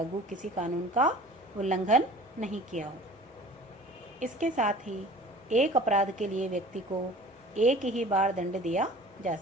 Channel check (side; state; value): both; normal; correlation 0.44